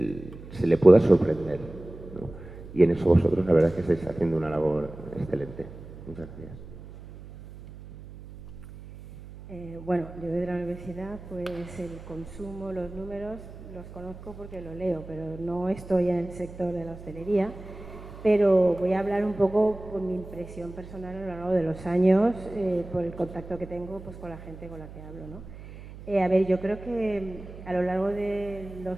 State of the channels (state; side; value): noise; right; hum, 15 dB below the sound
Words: se le pueda sorprender, ¿no? Y en eso vosotros la verdad es que estáis haciendo una labor excelente. Muchas gracias. Bueno, yo de la universidad, pues el consumo, los números, los conozco porque lo leo, pero no estoy en el sector de la hostelería. Pero voy a hablar un poco por mi impresión personal a lo largo de los años, por el contacto que tengo pues, con la gente con la que hablo, ¿no? A ver, yo creo que a lo largo de